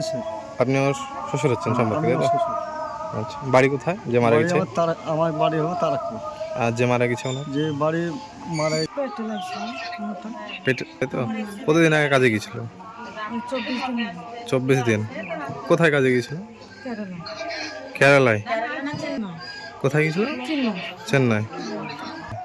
শেখ। আপনি ওর শ্বশুর হচ্ছেন সম্পর্কে, তাই তো? আচ্ছা, বাড়ি কোথায় যে মারা গেছে? আমার বাড়ি হলো তারাকপুর। আর যে মারা গেছে ওনার? যে বাড়ি মারা পেটে, তাই তো? কতদিন আগে কাজে গিয়েছিল? 24 দিন। কোথায় কাজে গিয়েছিল? কেরালায়। কোথায় গিয়েছিল? চেন্নাই।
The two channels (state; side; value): identical; both; correlation 1.00